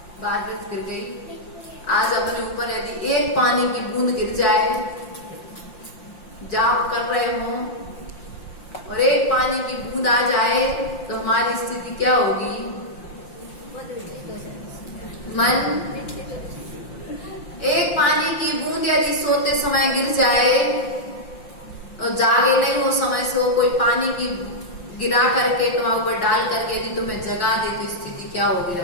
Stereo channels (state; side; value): late; right; 5.7 ms